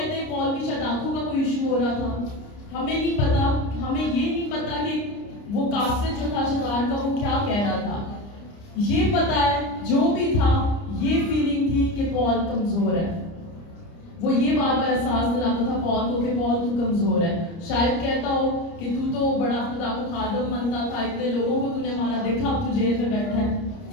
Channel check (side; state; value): right; late; 29 ms